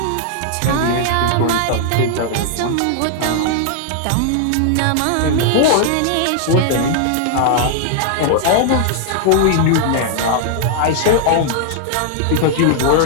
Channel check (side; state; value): both; different; correlation -0.01